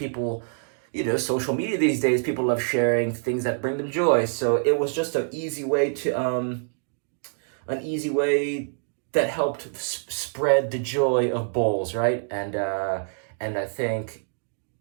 social media these days, people love sharing things that bring them joy. So it was just an easy way that helped spread the joy of bowls, right? And I think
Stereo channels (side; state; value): left; silent; digital silence